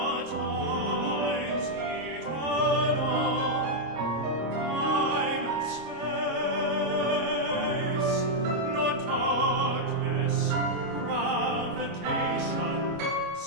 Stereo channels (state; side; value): late; left; 25 ms